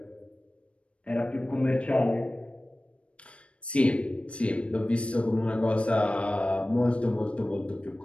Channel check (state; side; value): late; right; 0.061 ms